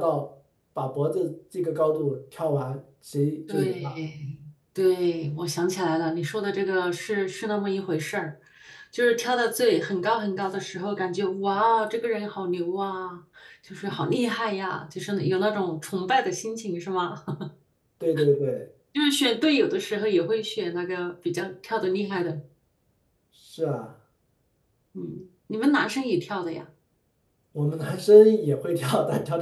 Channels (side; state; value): both; identical; correlation 1.00